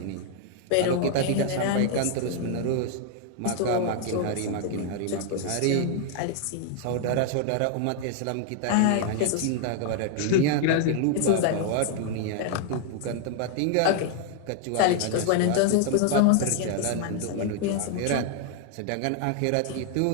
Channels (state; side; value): different; both; correlation 0.00